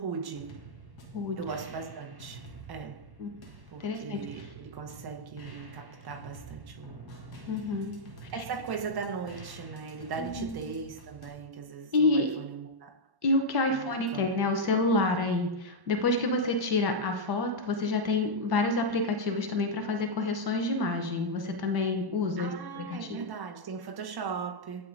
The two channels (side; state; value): left; late; 1.1 ms